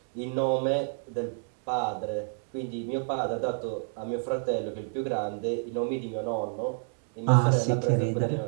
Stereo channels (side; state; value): left; silent; digital silence